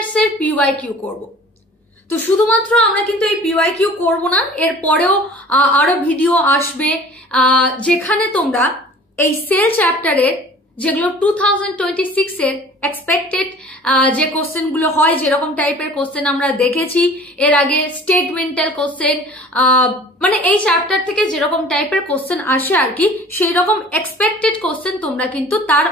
এর পিওয়াইকিউ করব। তো শুধুমাত্র আমরা কিন্তু এই পিওয়াইকিউ করব না, এর পরেও আরো ভিডিও আসবে যেখানে তোমরা এই সেল চ্যাপ্টারের যেগুলো 2026 এর এক্সপেক্টেড যে কোশ্চেন গুলো হয়, যেরকম টাইপের কোশ্চেন আমরা দেখেছি এর আগে, স্টেটমেন্টাল কোশ্চেন, মানে এই চ্যাপ্টার থেকে যেরকম টাইপের কোশ্চেন আসে আর কি, সেই রকম এক্সপেক্টেড কোশ্চেন তোমরা কিন্তু তার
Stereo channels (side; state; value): both; normal; correlation 0.46